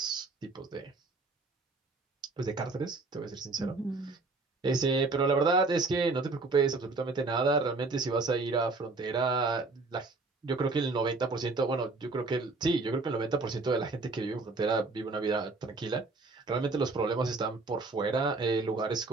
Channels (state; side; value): quieter; left; 3.6 dB